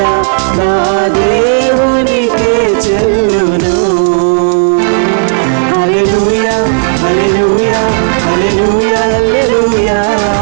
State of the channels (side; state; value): left; silent; digital silence